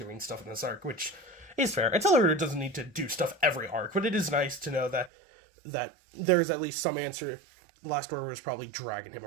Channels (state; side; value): drops out; left; at 5.1 s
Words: stuff in this arc, which is fair. Accelerator doesn't need to do stuff every arc, but it is nice to know that there's at least some answer. Last Order was probably dragging him